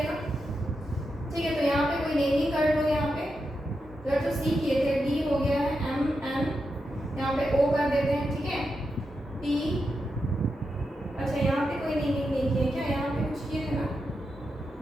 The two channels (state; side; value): normal; both; correlation 0.87